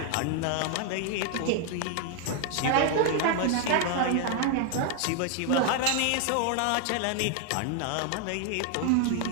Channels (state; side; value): different; both; correlation 0.01